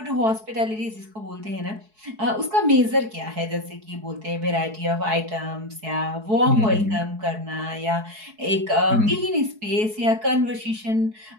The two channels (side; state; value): left; late; 4.7 ms